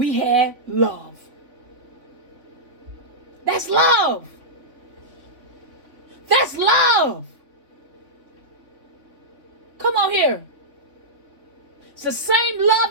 had love. That's love. That's love. Come on here. It's the same love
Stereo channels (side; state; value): left; late; 3.5 ms